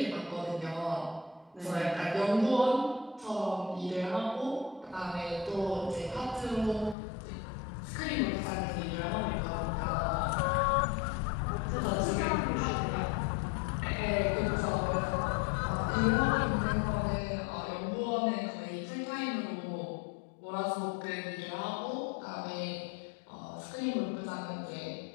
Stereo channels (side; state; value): right; drops out; at 7.0 s